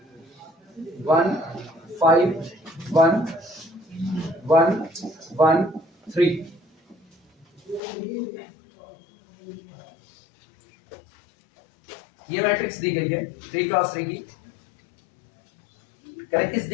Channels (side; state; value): right; drops out; at 7.8 s